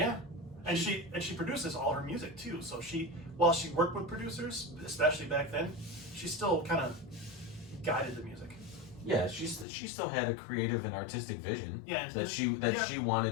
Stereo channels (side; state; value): right; drops out; at 9.7 s